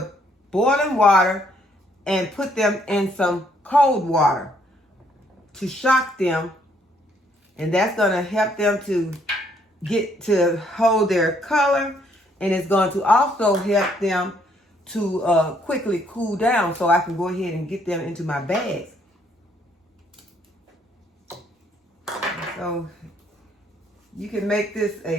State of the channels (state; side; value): normal; both; correlation 0.68